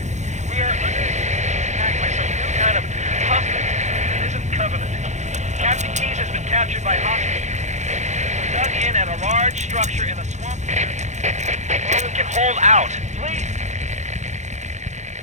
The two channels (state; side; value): late; left; 0.34 ms